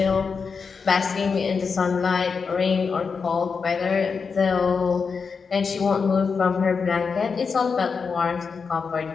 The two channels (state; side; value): quieter; right; 5.4 dB